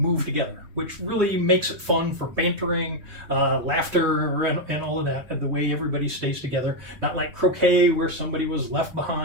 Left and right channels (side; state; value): left; late; 3.2 ms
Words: together, which really makes it fun for bantering, laughter, and all of that, and the way everybody stays together. Not like croquet, where somebody was left